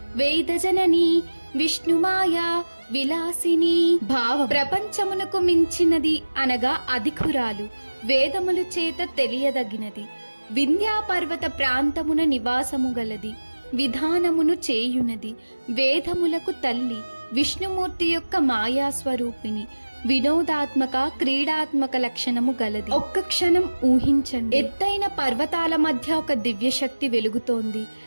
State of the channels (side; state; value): both; inverted; correlation -1.00